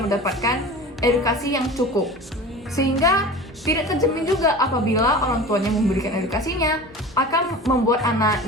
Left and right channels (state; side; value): normal; both; correlation 0.36